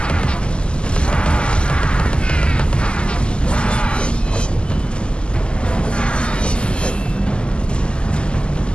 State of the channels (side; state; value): right; late; 0.050 ms